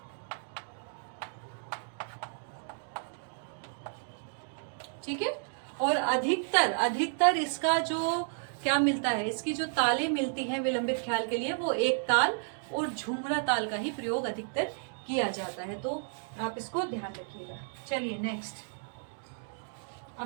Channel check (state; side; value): silent; left; digital silence